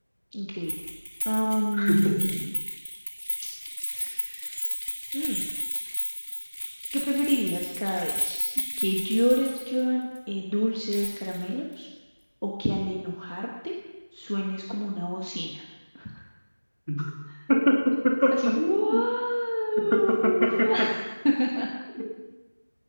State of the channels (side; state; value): both; inverted; correlation -1.00